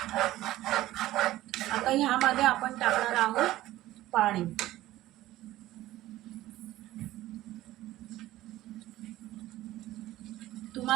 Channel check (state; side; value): quieter; left; 15.6 dB